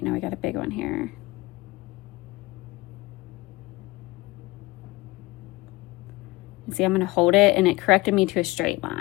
now we got a big one here. And see, I'm gonna hold it, and it corrected me to a straight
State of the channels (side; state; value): right; quieter; 21.7 dB